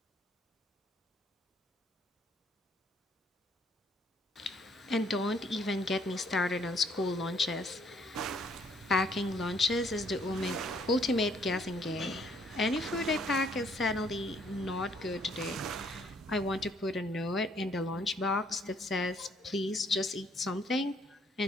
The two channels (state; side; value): normal; both; correlation 0.66